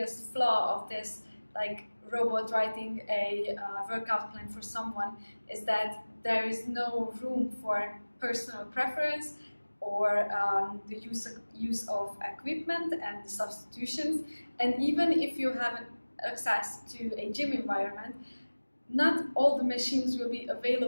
flaw of this, like robot writing a workout plan for someone, is that there is no room for personal preference or the use of equipment and the substitutions. And even if you have access to a gym environment, not all the machines will be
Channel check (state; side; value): inverted; both; correlation -1.00